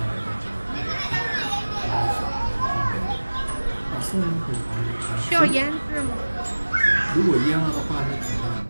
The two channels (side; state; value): both; inverted; correlation -1.00